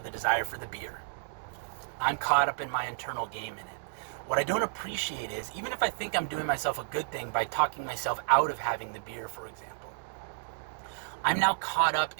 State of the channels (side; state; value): left; silent; digital silence